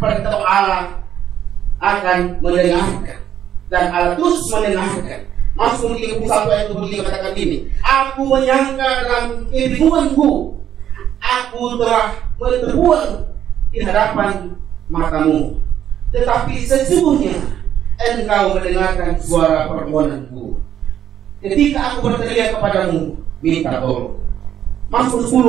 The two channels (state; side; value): quieter; left; 10.2 dB